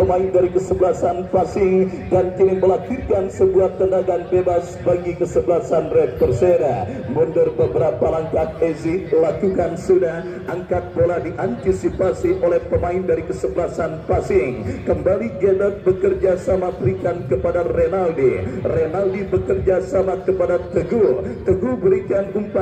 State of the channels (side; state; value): both; identical; correlation 1.00